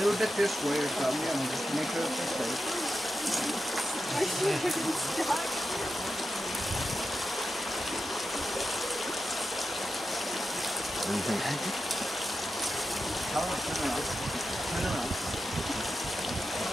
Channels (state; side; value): normal; both; correlation 0.90